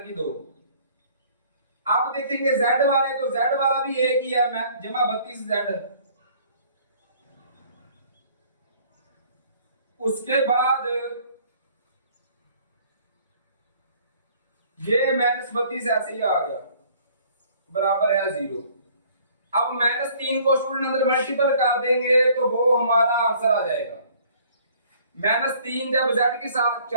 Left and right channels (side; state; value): both; inverted; correlation -0.56